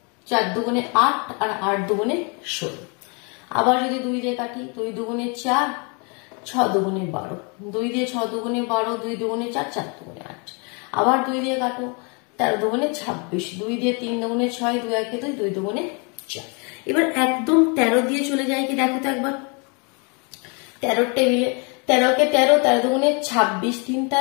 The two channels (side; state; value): right; quieter; 33.9 dB